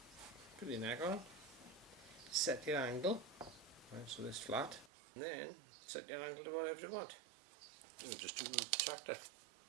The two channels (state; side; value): drops out; left; at 4.9 s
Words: your neck on, set your angle, right, so this flat, and then set your angle to whatever you want. And just do the tractor.